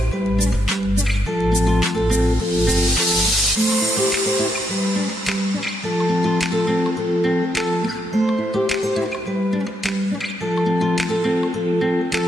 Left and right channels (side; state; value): both; normal; correlation 0.79